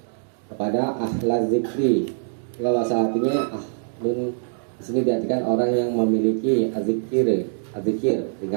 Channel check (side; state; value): left; silent; digital silence